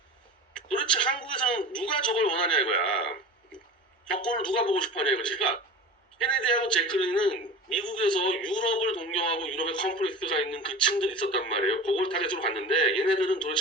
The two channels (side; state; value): both; normal; correlation 0.34